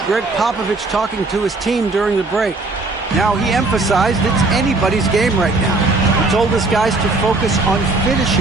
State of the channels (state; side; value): quieter; left; 3.3 dB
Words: Greg Popovich talking to his team during the break. Now, he emphasized it's anybody's game right now. told his guys to focus on